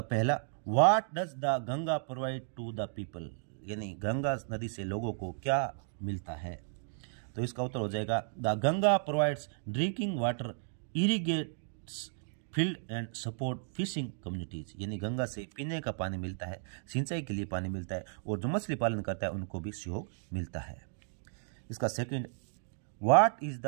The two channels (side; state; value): left; silent; digital silence